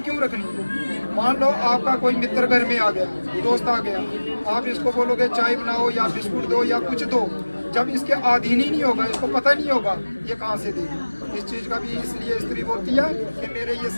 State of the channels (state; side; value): inverted; both; correlation -1.00